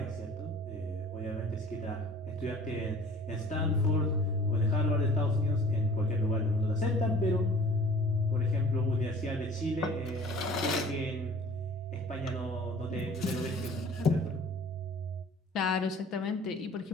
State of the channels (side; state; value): both; normal; correlation 0.48